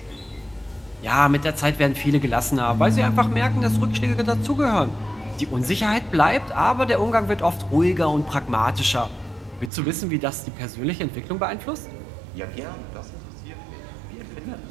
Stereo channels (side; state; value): left; drops out; at 9.7 s